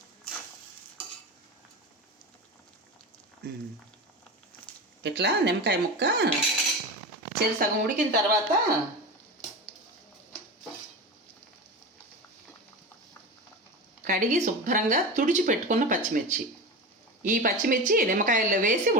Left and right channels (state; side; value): normal; both; correlation 0.25